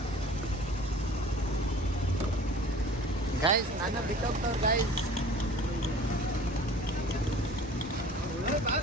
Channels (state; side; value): normal; both; correlation 0.46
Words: ಗೈಸ್, ನನ್ನ ಬಿಟ್ಟೋಗ್ತವ್ರು ಗೈಸ್.